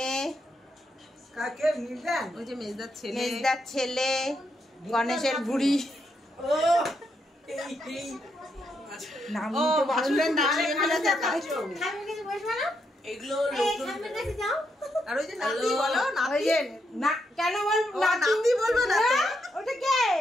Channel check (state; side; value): normal; both; correlation 0.80